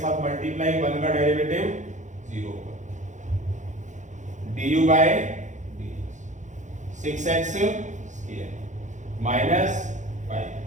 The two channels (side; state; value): left; late; 0.35 ms